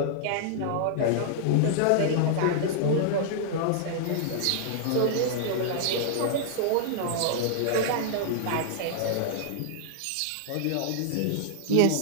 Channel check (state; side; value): different; both; correlation -0.01